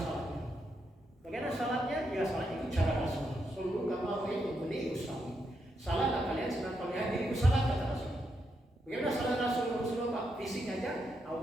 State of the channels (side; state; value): both; normal; correlation 0.82